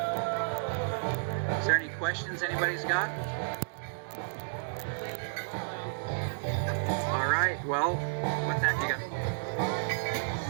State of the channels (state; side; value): silent; left; digital silence